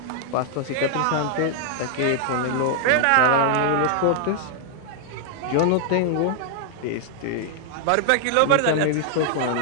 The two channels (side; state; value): both; different; correlation 0.00